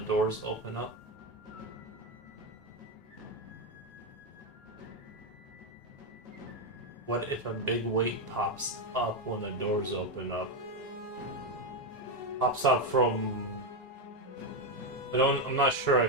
open up? What if a big weight pops up when the doors open up? Pops up from... I'm not sure I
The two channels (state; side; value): normal; both; correlation 0.07